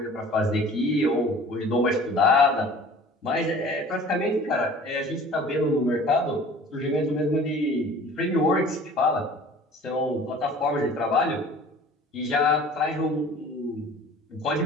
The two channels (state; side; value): normal; both; correlation 0.46